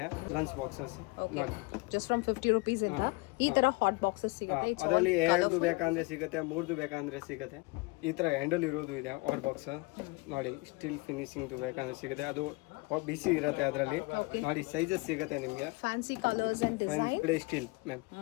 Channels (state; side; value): quieter; right; 26.6 dB